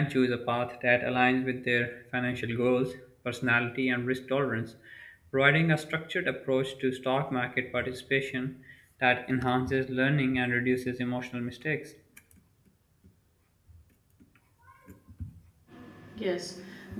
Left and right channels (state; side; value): identical; both; correlation 1.00